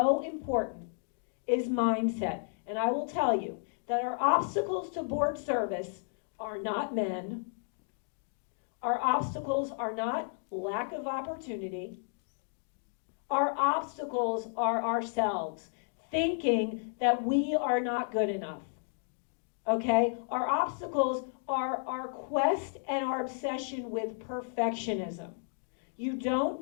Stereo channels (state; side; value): silent; right; digital silence